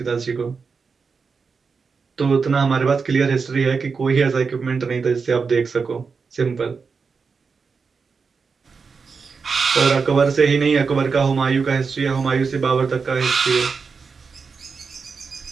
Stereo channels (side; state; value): left; quieter; 5.2 dB